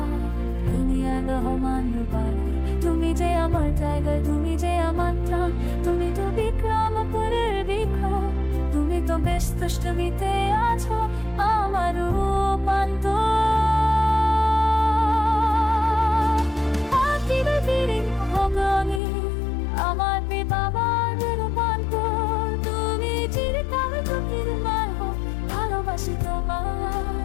আদিয়ান রহমান রূপান্তর। তুমি যে আমার টাইগার, তুমি যে আমার প্রাণ, তুমি তো বিক্রমপুরের বিক্রম, তুমি তো বেশ দুষ্টুমিতে আছো আমার রূপ। আমার বাবার রূপান্তর, তুমি চিরকাল চোখের মায় হও, ভালোবাসি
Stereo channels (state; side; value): drops out; right; at 19.0 s